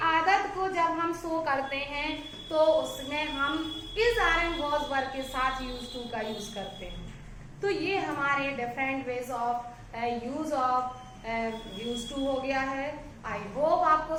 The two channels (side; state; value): both; identical; correlation 1.00